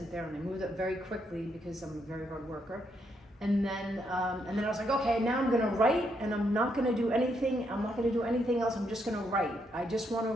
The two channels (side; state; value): both; normal; correlation 0.77